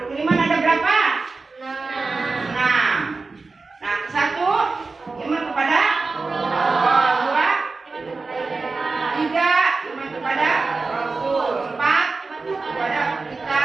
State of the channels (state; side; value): quieter; left; 3.9 dB